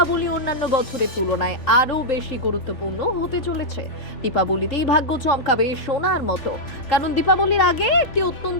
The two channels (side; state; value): right; late; 3.4 ms